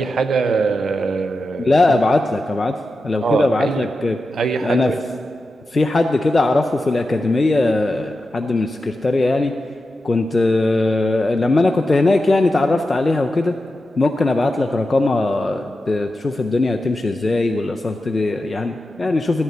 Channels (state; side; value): normal; both; correlation 0.91